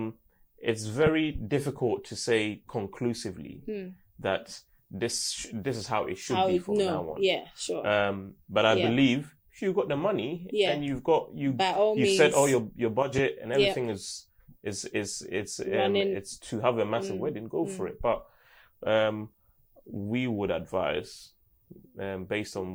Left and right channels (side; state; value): both; identical; correlation 1.00